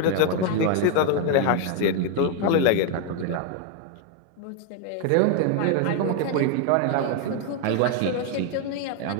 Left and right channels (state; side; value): different; both; correlation 0.01